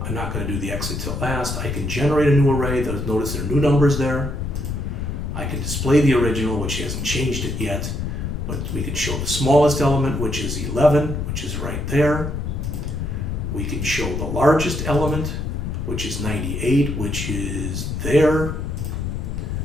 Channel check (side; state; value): left; noise; rumble, 5 dB below the sound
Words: I'm not going to do the exit till last. I can generate a new array. Notice there are new numbers there. I can display the original, which hasn't changed it yet, but we can show the smallest element, which is 11, which is right there. We can show the largest element, which is 98, which is there.